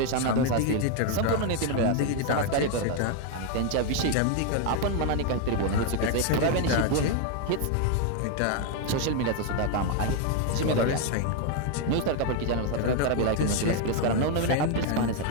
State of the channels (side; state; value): both; different; correlation 0.01